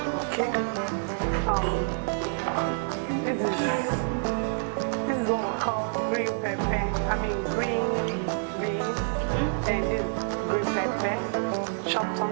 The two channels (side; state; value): left; silent; digital silence